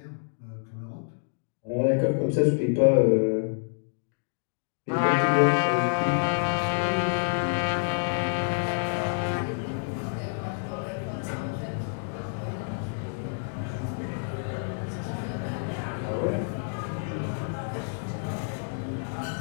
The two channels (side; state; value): right; silent; digital silence